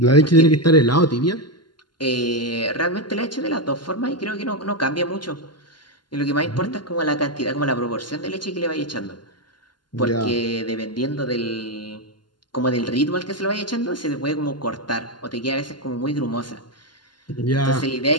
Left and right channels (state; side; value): late; right; 0.71 ms